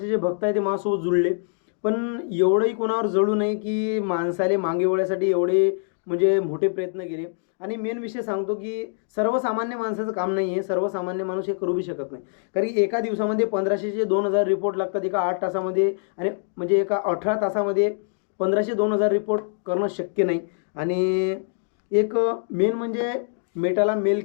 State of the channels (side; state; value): right; silent; digital silence